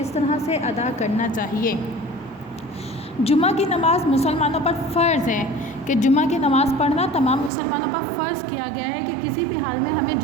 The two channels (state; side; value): drops out; left; at 7.5 s